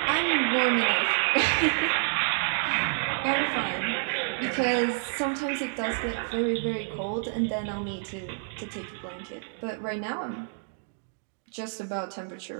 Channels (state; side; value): silent; left; digital silence